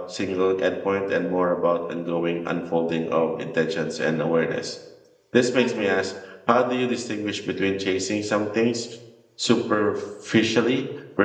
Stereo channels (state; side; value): identical; both; correlation 1.00